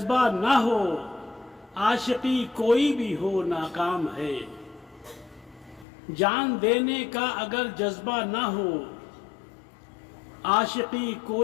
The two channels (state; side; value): drops out; right; at 5.9 s